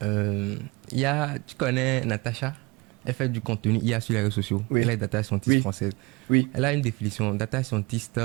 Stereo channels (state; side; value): quieter; left; 25.4 dB